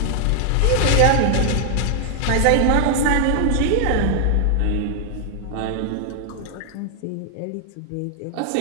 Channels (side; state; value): both; different; correlation 0.00